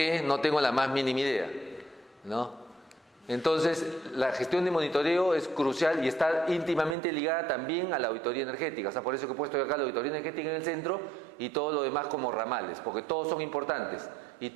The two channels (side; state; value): left; drops out; at 7.0 s